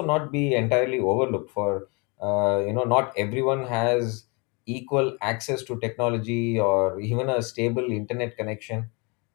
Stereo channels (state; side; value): quieter; right; 30.5 dB